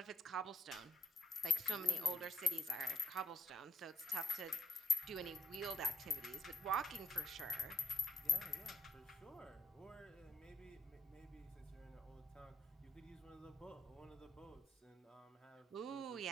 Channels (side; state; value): both; normal; correlation 0.75